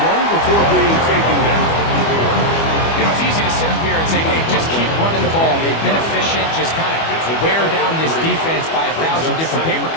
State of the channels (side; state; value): right; late; 25 ms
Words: before being taken down. You know, it's easy to sit up here and say, hey, just keep running the ball. They've been efficient, just kind of wear down this defense by 1,000 different paper